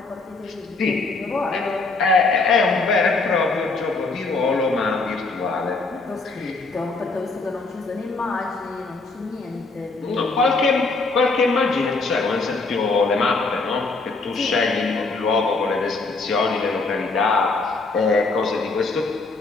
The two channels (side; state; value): right; quieter; 3.7 dB